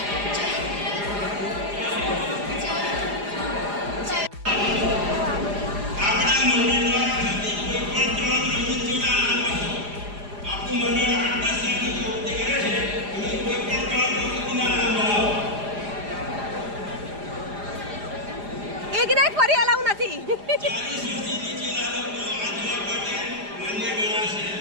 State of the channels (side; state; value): left; late; 4.9 ms